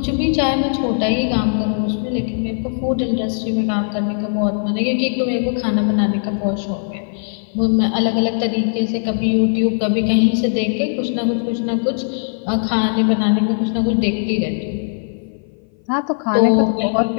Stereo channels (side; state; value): right; silent; 59 dB below the other